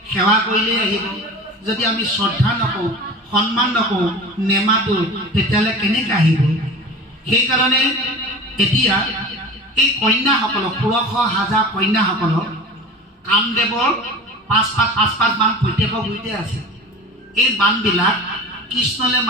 সেৱা কৰিলেই আহিব। যদি আমি শ্ৰদ্ধা নকৰোঁ, সন্মান নকৰোঁ, নেমাতো, তেতিয়াহ'লে কেনেকৈ আহিব? সেইকাৰণে এতিয়া এই কন্যাসকলক, 16,000 কন্যাসকলক কামদেৱৰ 5 বান প্ৰত্যেকৰ গুৰিতে আছে। এই বানবিলাক কৃষ্ণলৈ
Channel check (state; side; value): normal; both; correlation 0.35